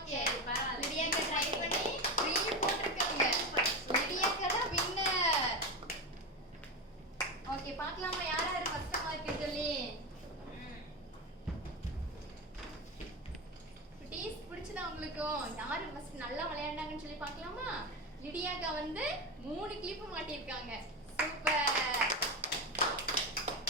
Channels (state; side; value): normal; both; correlation 0.17